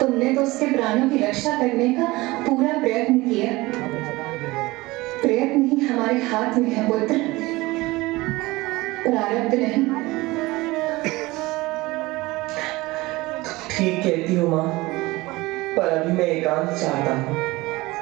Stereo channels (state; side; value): quieter; left; 20.9 dB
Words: तो उसके प्राणों की रक्षा करने का पूरा प्रयत्न किया। प्रयत्न ही हमारे हाथ में है पुत्र, प्रारब्ध नहीं। ठीक कहती हो माँ, पर अभी मैं एकांत चाहता हूँ।